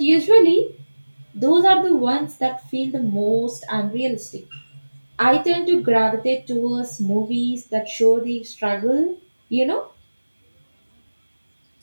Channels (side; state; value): both; inverted; correlation -1.00